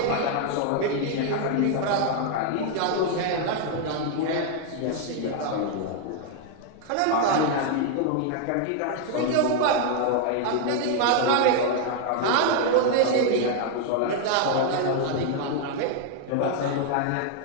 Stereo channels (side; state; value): both; different; correlation 0.00